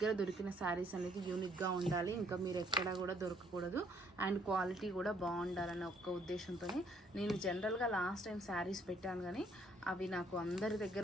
దొరికిన శారీస్ అనేది యూనిక్గా ఉండాలి, ఇంకా మీరు ఎక్కడా కూడా దొరకకూడదు, అండ్ క్వాలిటీ కూడా బాగుండాలన్న ఒక్క ఉద్దేశంతోనే నేను జనరల్గా లాస్ట్ టైం శారీస్ పెట్టాను, కానీ అవి నాకు అందరి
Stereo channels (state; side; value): normal; both; correlation 0.66